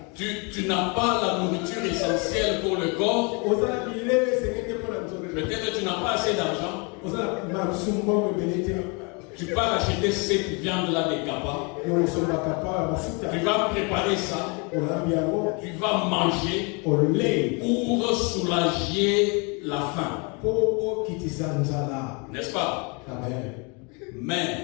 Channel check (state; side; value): quieter; right; 32.2 dB